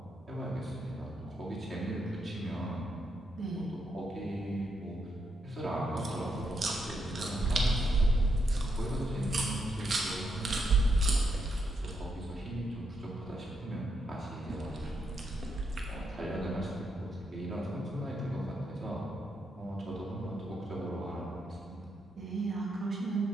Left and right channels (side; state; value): both; normal; correlation 0.80